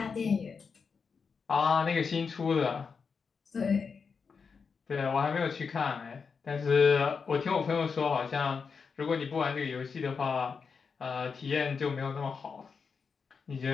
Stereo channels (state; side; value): quieter; right; 5.5 dB